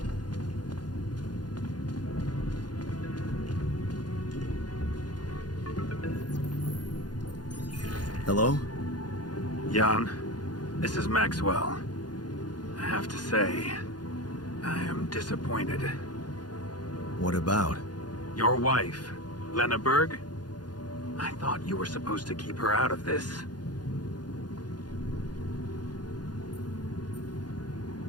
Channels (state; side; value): late; right; 0.70 ms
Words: Hello? Jan, this is Maxwell. I have to say, I am disappointed. What about? Your wife, Lena Berg? I thought you were supposed to keep her out of this.